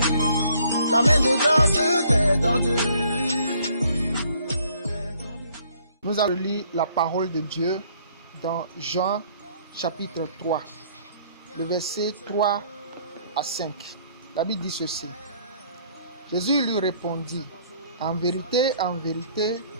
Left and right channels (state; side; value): inverted; both; correlation -0.62